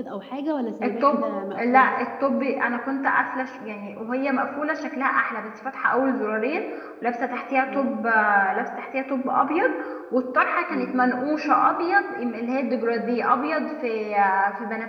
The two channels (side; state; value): both; identical; correlation 1.00